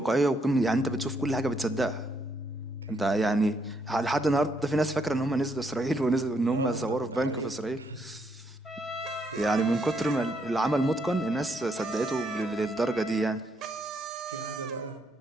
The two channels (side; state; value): both; normal; correlation 0.74